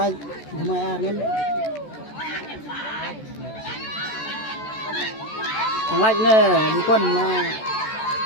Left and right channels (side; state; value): right; late; 14 ms